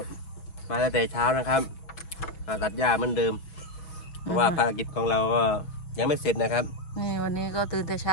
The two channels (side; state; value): right; late; 5.7 ms